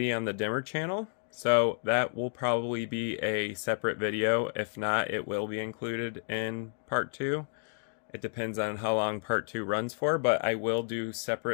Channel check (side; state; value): right; silent; digital silence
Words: on the dimmer channel. So that will probably be a separate video. If not, it will be included in part 2. It depends on how long part 2 runs for, but I will do